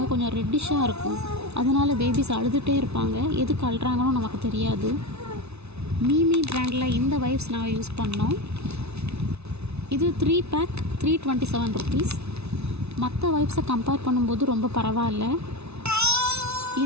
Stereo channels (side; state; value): left; late; 0.80 ms